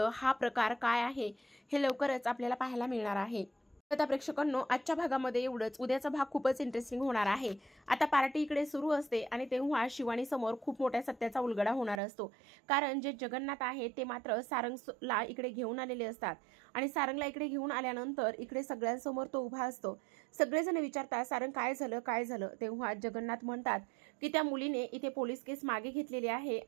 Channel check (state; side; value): drops out; left; at 12.0 s